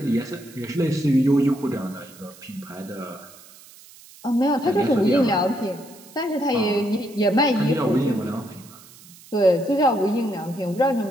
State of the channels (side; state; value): right; noise; hiss, 22 dB below the sound